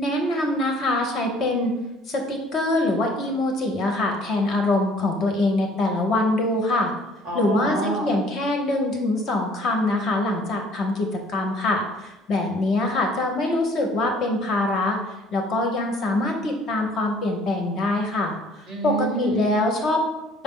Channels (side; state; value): both; normal; correlation 0.56